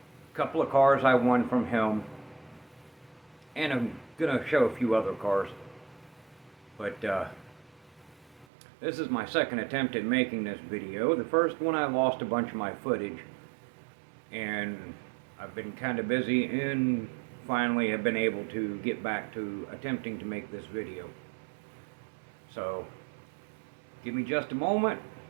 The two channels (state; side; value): drops out; left; at 8.5 s